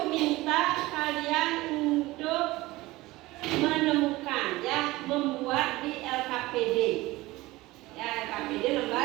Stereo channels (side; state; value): left; quieter; 19.4 dB